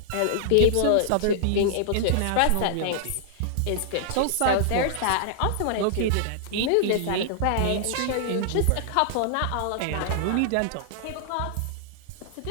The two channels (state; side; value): different; both; correlation -0.01